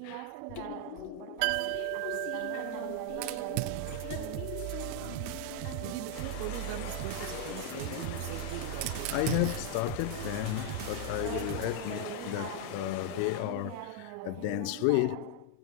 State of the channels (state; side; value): different; both; correlation 0.00